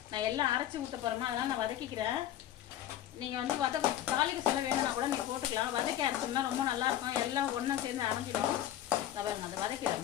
நான் எல்லாம் அரைச்சி ஊற்ற போறேமா, அதனால நான் வதக்கிக்கிறேன். நீங்க வந்து தாளிக்கு சொல்ல வேணும்னா கூட நீங்க போட்டுக்கலாம். வதக்கி அரைச்சோம்னா ரொம்ப நல்லா இருக்கும், எல்லாம் ஒன்னா சேர்ந்து அரைஞ்சிடும். பாருங்க, அதை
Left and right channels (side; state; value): right; quieter; 12.1 dB